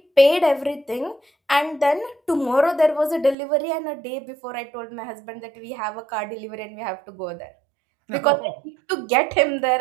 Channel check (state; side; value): drops out; left; at 3.4 s